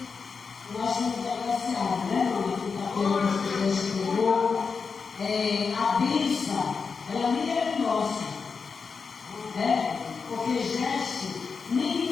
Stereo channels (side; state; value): right; quieter; 5.3 dB